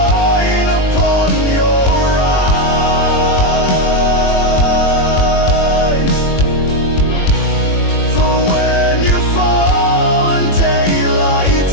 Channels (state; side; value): late; right; 21 ms